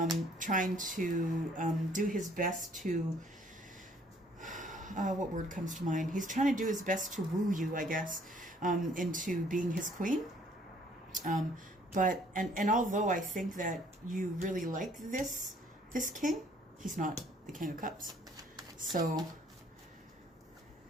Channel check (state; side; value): normal; both; correlation 0.61